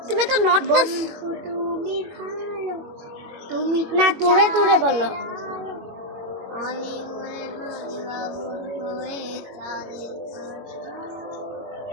তুমি তো নট বন্ধু তুমি ভালো, তুমি না দূরে দূরে বলো। আমি মনে হয়ে চাঁদে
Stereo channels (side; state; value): left; late; 21 ms